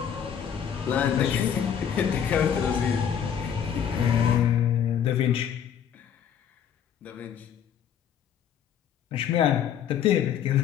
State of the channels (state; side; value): quieter; right; 8.7 dB